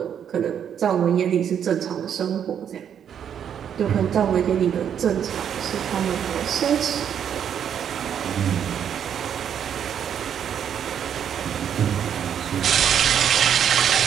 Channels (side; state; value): left; quieter; 8.7 dB